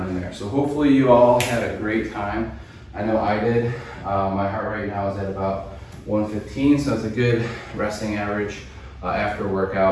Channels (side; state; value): both; identical; correlation 1.00